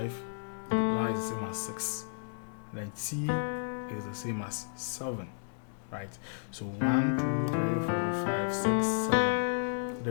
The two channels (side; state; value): right; silent; digital silence